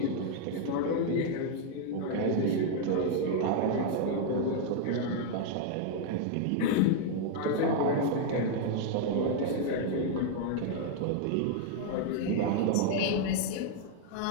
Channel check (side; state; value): both; different; correlation 0.00